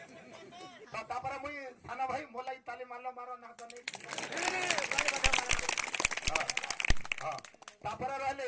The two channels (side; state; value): both; identical; correlation 1.00